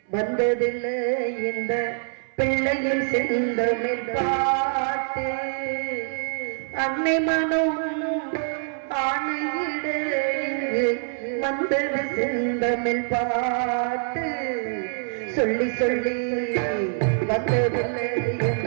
வந்ததில்லை இந்த பிள்ளையின் செந்தமிழ் பாட்டு, அன்னை மனம் ஆணையிட வந்தது செந்தமிழ் பாட்டு. சொல்லி சொல்லி வந்ததில்லை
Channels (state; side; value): silent; left; 62 dB below the other